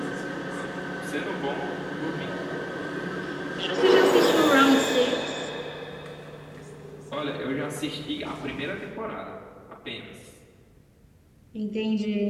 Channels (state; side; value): identical; both; correlation 1.00